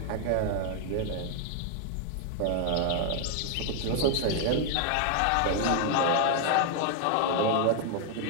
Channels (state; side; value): different; both; correlation 0.00